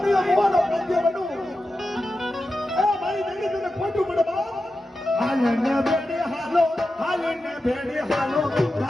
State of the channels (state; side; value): normal; both; correlation 0.91